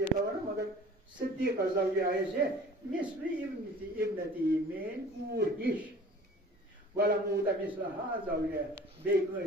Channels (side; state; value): both; normal; correlation 0.46